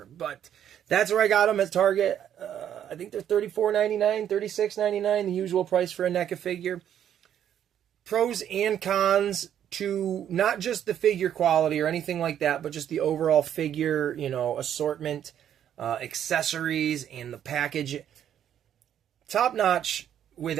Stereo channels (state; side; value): quieter; left; 10.0 dB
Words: But that's where I got them at Target. I think they're $34.99, $36.99, the usual price for a NECA figure. Pros and cons to not just the figure quality or anything like that, but just the overall figure, assortment, accessories, and the package. Top notch. With